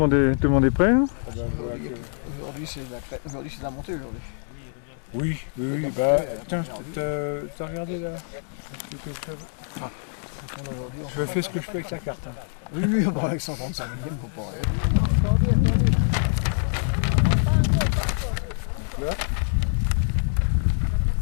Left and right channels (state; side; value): silent; right; 62 dB below the other